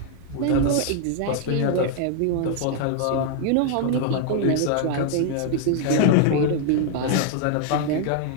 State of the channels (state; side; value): different; both; correlation 0.00